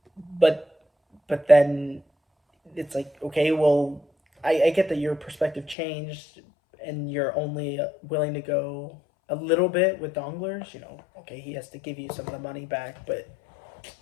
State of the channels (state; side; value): drops out; right; at 5.8 s